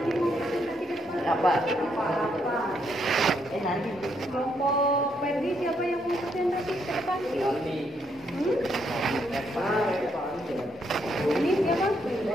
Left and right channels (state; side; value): normal; both; correlation 0.75